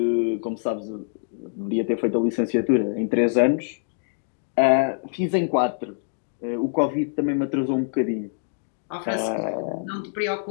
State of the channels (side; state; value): right; silent; digital silence